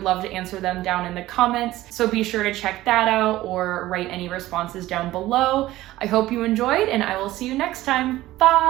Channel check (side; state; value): left; quieter; 16.1 dB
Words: love to answer them down in the comments. So be sure to check that out or write any responses down below. I hope you enjoyed, and I will see you next time.